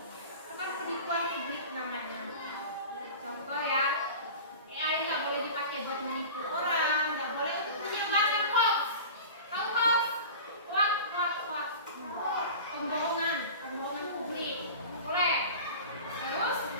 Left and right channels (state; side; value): inverted; both; correlation -0.35